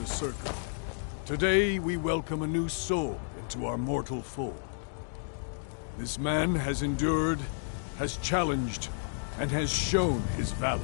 Circle, today we welcome a new soul into our mortal fold. This man has endured, has challenged, and has shown his valor.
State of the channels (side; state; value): right; silent; digital silence